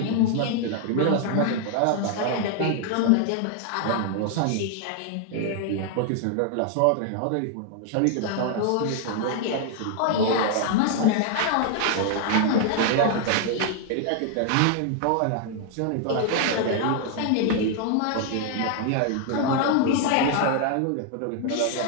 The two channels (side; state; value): both; different; correlation 0.00